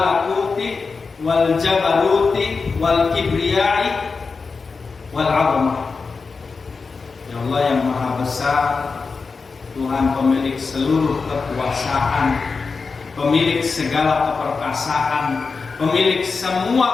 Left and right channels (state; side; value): quieter; right; 4.6 dB